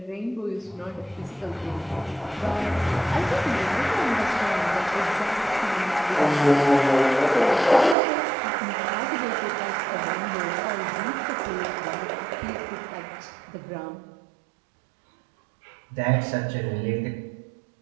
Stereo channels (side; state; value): left; drops out; at 8.0 s